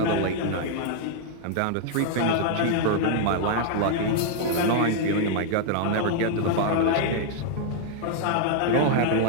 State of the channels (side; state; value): both; different; correlation -0.01